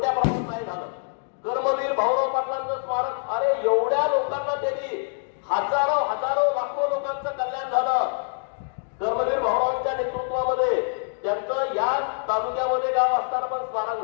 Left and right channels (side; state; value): right; silent; digital silence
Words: प्रमाणात नाही झालं. कर्मवीर भाऊराव पाटलांचं स्मारक, अरे एवढ्या लोकांना त्यांनी हजारो लाखो लोकांचं कल्याण झालं. कर्मवीर भाऊरावांच्या नेतृत्वामध्ये त्यांचं या तालुक्यामध्ये गाव असताना पण स्मारक